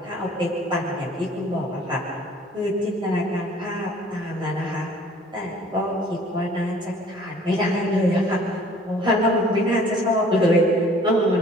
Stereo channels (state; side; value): normal; both; correlation 0.53